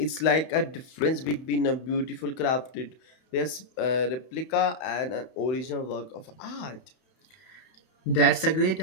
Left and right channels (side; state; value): right; late; 31 ms